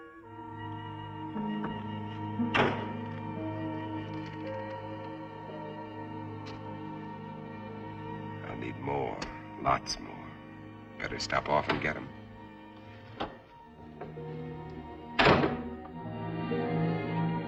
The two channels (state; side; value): identical; both; correlation 1.00